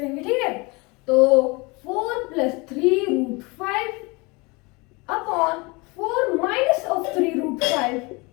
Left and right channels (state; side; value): quieter; right; 26.7 dB